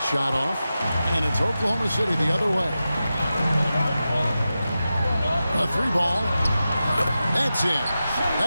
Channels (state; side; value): inverted; both; correlation -0.92